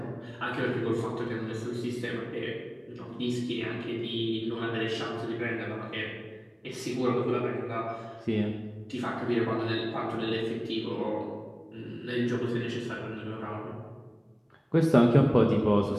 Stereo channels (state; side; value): identical; both; correlation 1.00